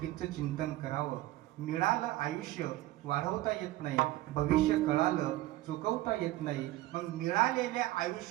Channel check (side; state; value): left; quieter; 16.3 dB